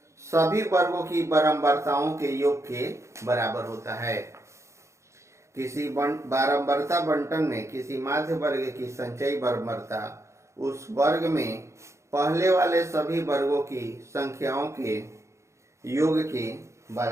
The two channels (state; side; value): late; left; 0.14 ms